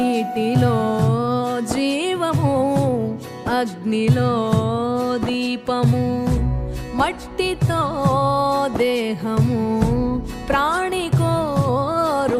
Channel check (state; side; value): identical; both; correlation 1.00